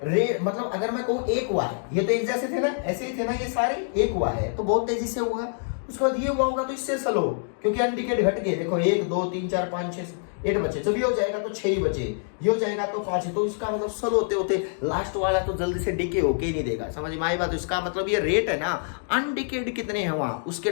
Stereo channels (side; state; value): right; silent; digital silence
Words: मतलब अगर मैं कहूँ एक हुआ है, ये तो एक जैसे थे ना, ऐसे ही थे ना ये सारे, एक हुआ है तो बहुत तेजी से हुआ, उसके बाद ये हुआ होगा तो इससे स्लो, क्योंकि अनडिकेड घट गए। देखो 1 2 3 4 5 6 8 बचे, जब ये हो जाएगा तो 6 ही बचे, ये हो जाएगा तो 5, तो इसका मतलब स्लो होते होते लास्ट वाला तो जल्दी से डिके होके ही नहीं देगा। समझ में आई बात? इसका मतलब ये रेट है ना, अनडिकेड कितने हैं वहां, उसके